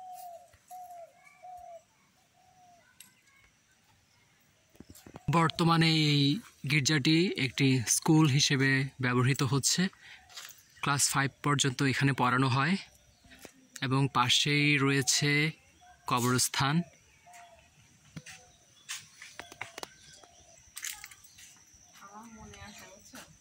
বর্তমানে এই গির্জাটি একটি স্কুল হিসেবে ব্যবহৃত হচ্ছে। ক্লাস 5 পর্যন্ত এখানে পড়ানো হয় এবং পাশেই রয়েছে কবরস্থান।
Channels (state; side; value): identical; both; correlation 1.00